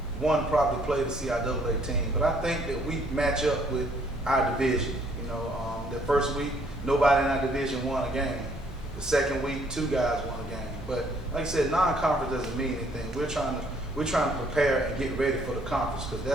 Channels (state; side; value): normal; both; correlation 0.65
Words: probably played the CIAA team, but I think that we match up with our division. The first week, nobody in our division won a game. The second week, 2 guys won a game. But like I said, non-conference doesn't mean anything. We're trying to prepare and get ready for the conference because